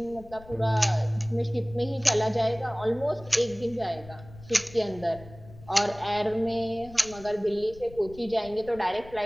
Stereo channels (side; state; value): left; noise; rumble, 19 dB below the sound